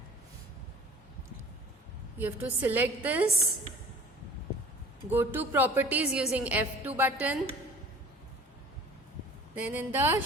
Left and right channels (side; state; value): both; normal; correlation 0.45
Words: You have to select this, go to properties using F2 button, then in the